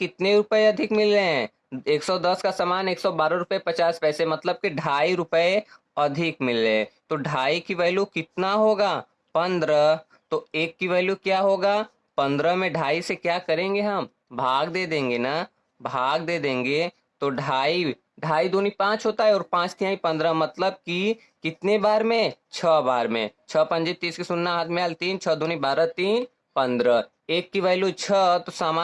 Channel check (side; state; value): both; identical; correlation 1.00